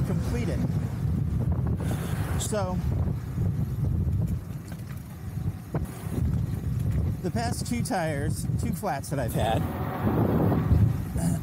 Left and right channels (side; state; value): both; identical; correlation 1.00